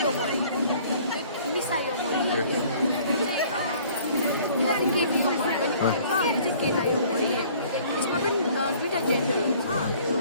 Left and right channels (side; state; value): both; inverted; correlation -0.54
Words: यो मरि मिसा यो मरि यो चाहिँ केटी यो मरि पनि भन्छ यो चाहिँ केटा यो मरि यसमा पनि दुईवटा जेन्डर हुन्छ यो